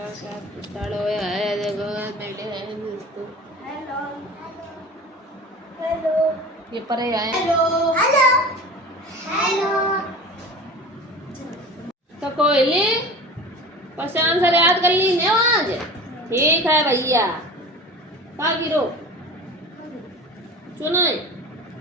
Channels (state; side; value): normal; both; correlation 0.36